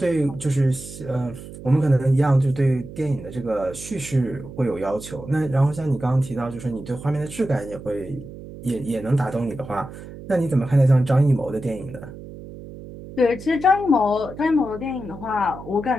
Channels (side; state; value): right; noise; hum, 14 dB below the sound